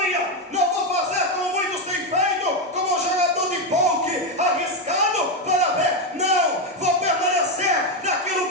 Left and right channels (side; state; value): both; normal; correlation 0.08